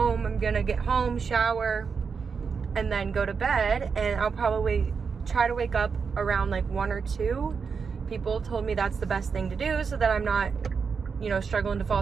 I'm gonna get home, shower, and then go to bed, and I'll probably try to wake up around like 1 or 2. People told me that's the best thing to do so that I'm not, you know, struggling to fall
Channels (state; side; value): quieter; left; 5.7 dB